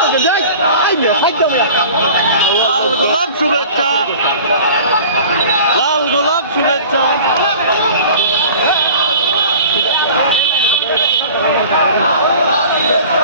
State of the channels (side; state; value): both; inverted; correlation -0.43